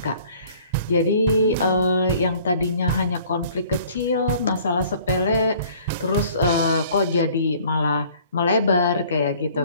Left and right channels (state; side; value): inverted; both; correlation -0.54